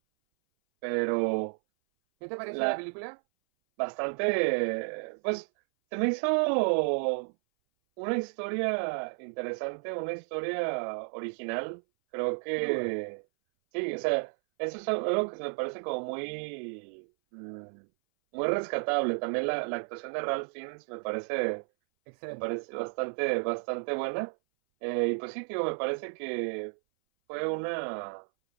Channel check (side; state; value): left; silent; 56 dB below the other